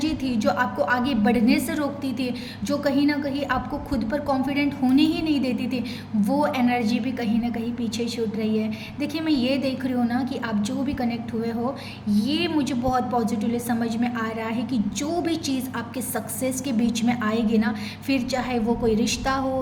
थी जो आपको आगे बढ़ने से रोकती थी, जो कहीं ना कहीं आपको खुद पर कॉन्फिडेंट होने ही नहीं देती थी, वो एनर्जी भी कहीं ना कहीं पीछे छूट रही है। देखिए मैं ये देख रही हूँ ना कि आप जो भी कनेक्ट हुए हो, ये मुझे बहुत पॉजिटिवली समझ में आ रहा है कि जो भी चीज़ आपके सक्सेस के बीच में आएगी ना, फिर चाहे वो कोई रिश्ता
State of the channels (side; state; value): both; identical; correlation 1.00